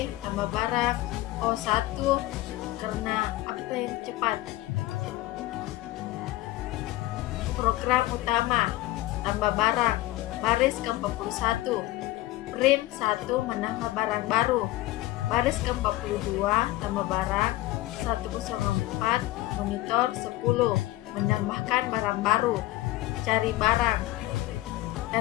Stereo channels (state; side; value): quieter; right; 17.5 dB